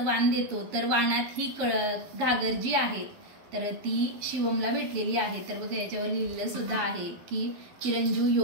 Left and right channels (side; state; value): left; late; 12 ms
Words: वाण देतो, तर वाणात ही घागर जी आहे तर ती शिवमला भेटलेली आहे। तर बघा याच्यावर लिहिलेलं सुद्धा आहे की चिरंजीव